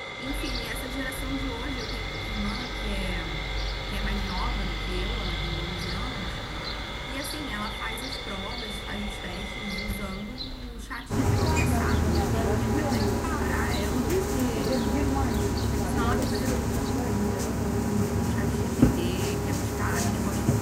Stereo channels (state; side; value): identical; both; correlation 1.00